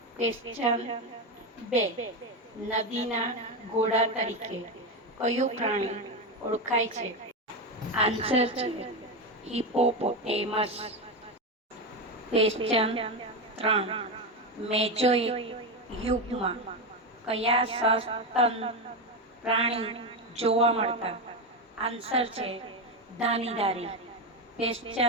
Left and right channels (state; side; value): normal; both; correlation 0.13